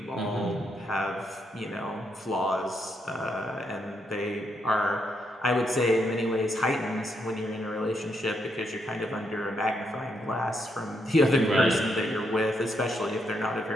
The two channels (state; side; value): normal; both; correlation 0.78